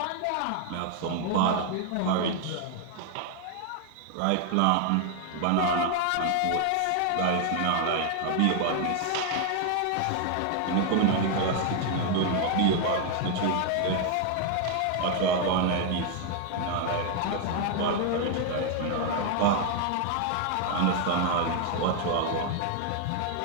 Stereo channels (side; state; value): both; different; correlation 0.00